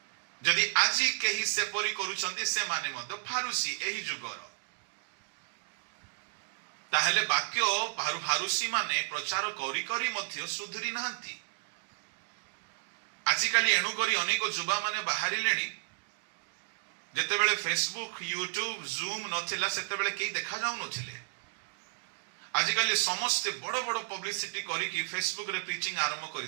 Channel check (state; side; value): silent; left; digital silence